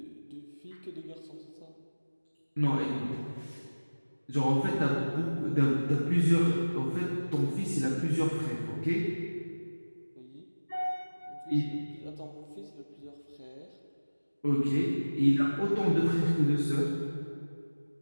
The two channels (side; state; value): both; inverted; correlation -1.00